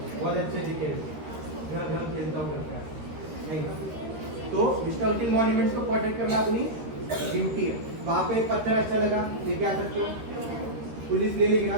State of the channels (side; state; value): left; late; 13 ms